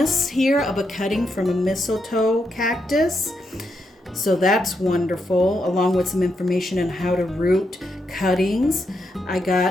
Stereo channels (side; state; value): both; normal; correlation 0.82